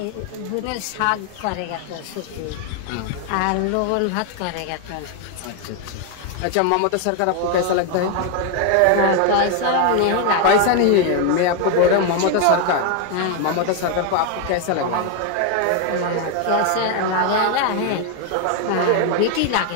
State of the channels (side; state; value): both; different; correlation 0.01